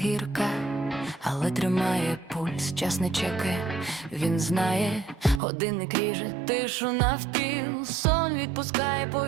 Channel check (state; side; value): drops out; left; at 5.4 s